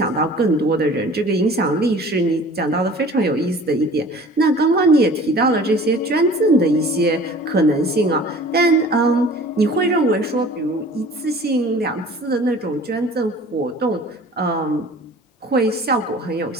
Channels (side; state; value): both; normal; correlation 0.46